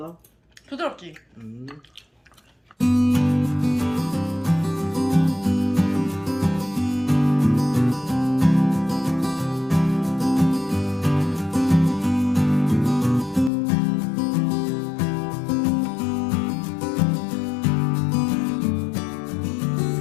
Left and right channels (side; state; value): right; drops out; at 13.5 s